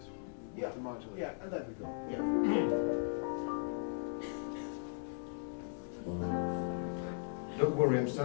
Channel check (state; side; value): silent; right; digital silence